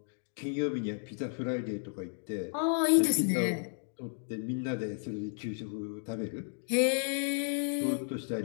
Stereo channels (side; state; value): right; silent; 56 dB below the other